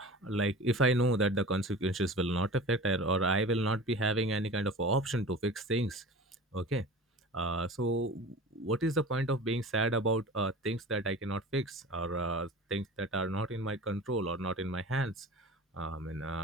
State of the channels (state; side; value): normal; both; correlation 0.37